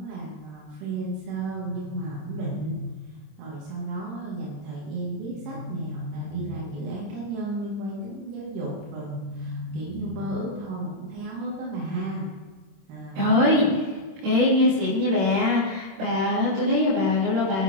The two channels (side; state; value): left; late; 26 ms